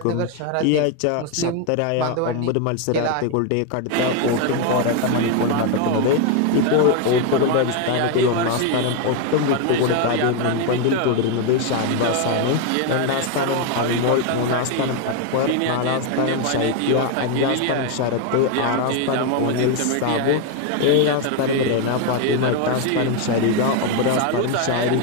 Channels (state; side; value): different; both; correlation 0.01